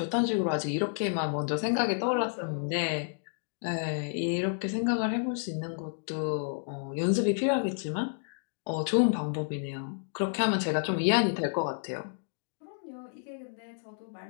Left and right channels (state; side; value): silent; right; digital silence